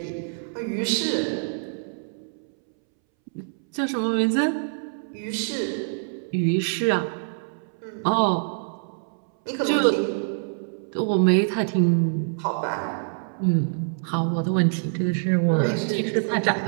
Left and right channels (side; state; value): left; silent; 62 dB below the other